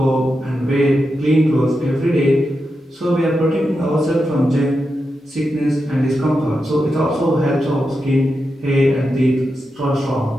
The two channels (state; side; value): normal; both; correlation 0.88